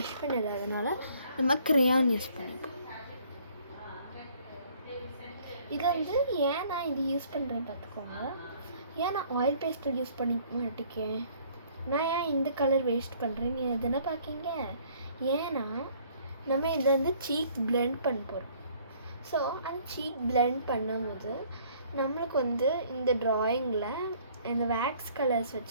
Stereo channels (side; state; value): both; inverted; correlation -0.59